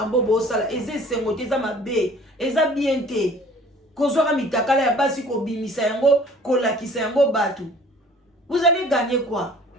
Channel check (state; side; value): normal; both; correlation 0.50